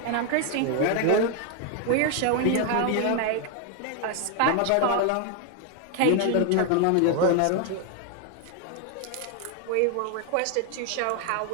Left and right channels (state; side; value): different; both; correlation 0.00